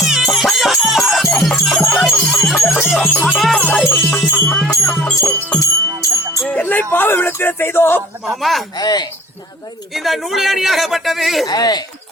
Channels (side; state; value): both; normal; correlation 0.51